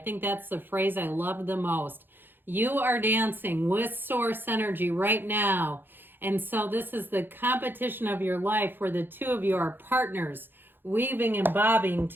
that's the phrase I love the most. You are dancing with source energy right now. And so this is the competition of your life where the two of you are partners, weaving and bobbing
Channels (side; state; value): left; late; 0.098 ms